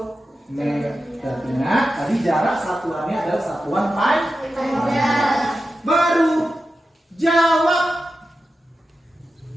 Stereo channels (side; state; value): both; normal; correlation 0.91